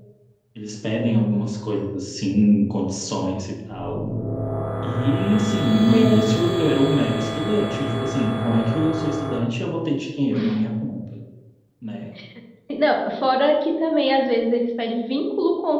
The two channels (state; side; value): identical; both; correlation 1.00